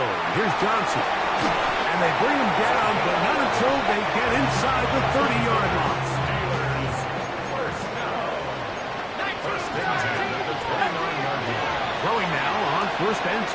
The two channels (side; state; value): both; identical; correlation 1.00